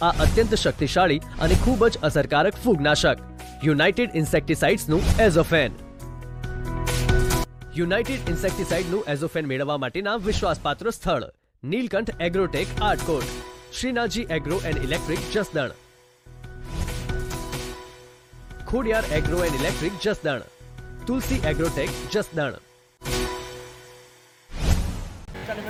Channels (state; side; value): identical; both; correlation 1.00